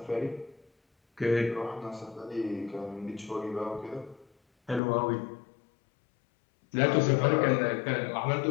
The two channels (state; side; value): drops out; right; at 4.8 s